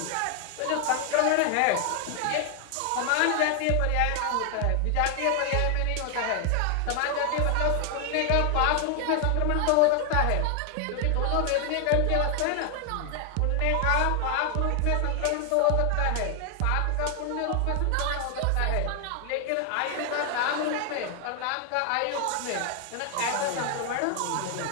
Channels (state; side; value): different; both; correlation 0.00